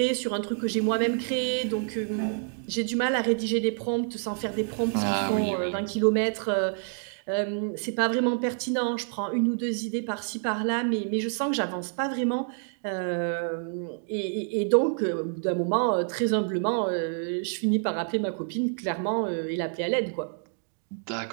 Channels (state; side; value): silent; left; 59 dB below the other